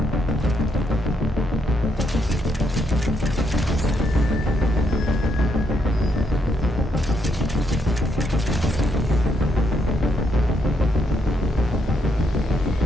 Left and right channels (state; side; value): normal; both; correlation 0.77